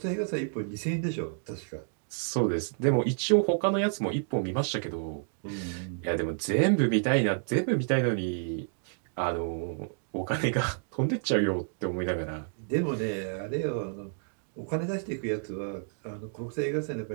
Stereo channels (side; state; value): left; silent; digital silence